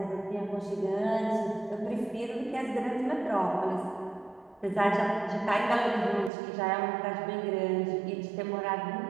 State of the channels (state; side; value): drops out; left; at 6.3 s